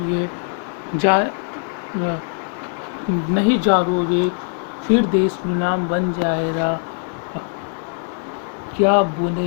जा नहीं जागोगे फिर देश गुलाम बन जाएगा। क्या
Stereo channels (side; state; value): right; silent; 56 dB below the other